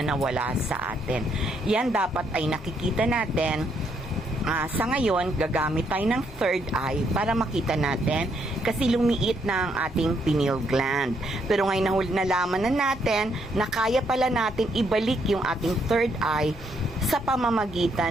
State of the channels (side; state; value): both; normal; correlation 0.74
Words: nawala sa atin. Yan dapat ay nakikita natin. Sa ngayon, gagamit tayo ng third eye para makita natin kasi lumiit na ang ating pineal gland. Pero ngayon nalaman na natin na kaya pala natin ibalik yung ating third eye sa